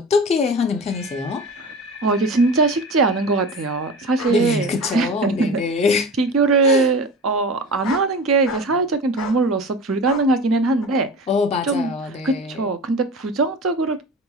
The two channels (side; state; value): both; normal; correlation 0.33